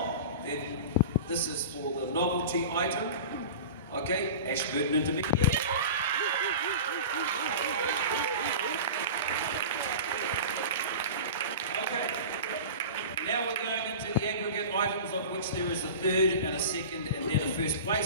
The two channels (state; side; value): inverted; both; correlation -0.33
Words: then this is for the novelty item. Okay, Ashburton Intermediate. Okay, now we're going into the aggregate items of which there is a third and a second and then a first